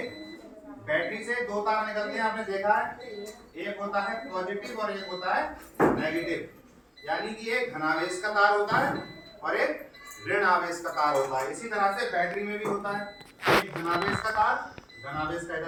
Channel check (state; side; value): identical; both; correlation 1.00